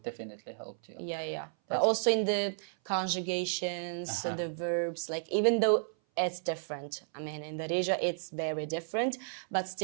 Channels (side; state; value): left; silent; 56 dB below the other